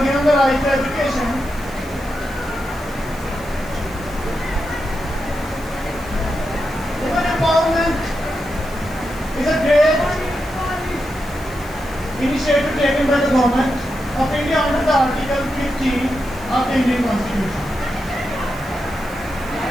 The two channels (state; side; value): noise; right; hiss, 21 dB below the sound